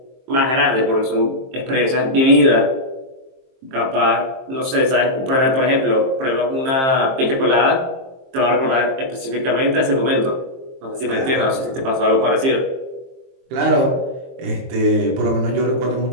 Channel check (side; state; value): left; late; 23 ms